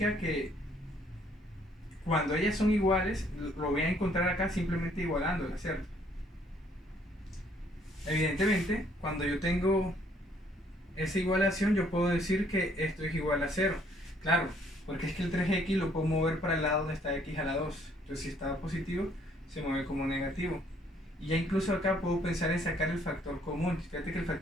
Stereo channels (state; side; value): normal; both; correlation 0.64